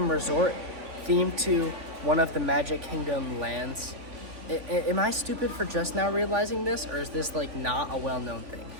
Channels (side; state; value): left; late; 3.6 ms